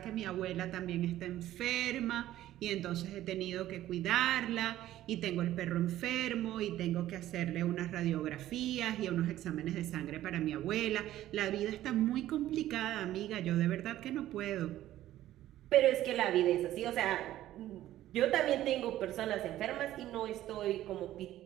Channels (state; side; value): quieter; left; 13.8 dB